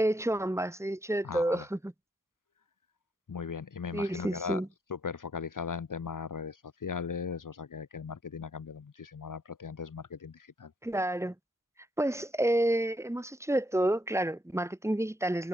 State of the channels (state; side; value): normal; both; correlation 0.74